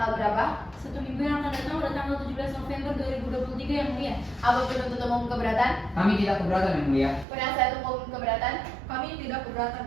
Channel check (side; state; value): left; drops out; at 7.2 s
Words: berapa? 1 minggu yang akan datang pada tanggal 17 November 2023 yang mulia. Apa penuntut umum keberatan? Kami tidak keberatan yang mulia. Penasihat hukum keberatan? Kami tidak keberatan